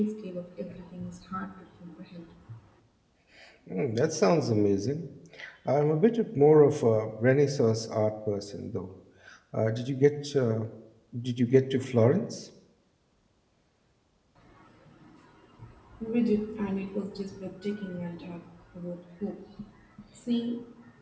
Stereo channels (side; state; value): both; identical; correlation 1.00